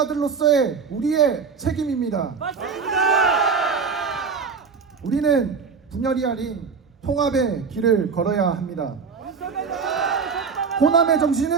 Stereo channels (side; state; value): left; quieter; 5.5 dB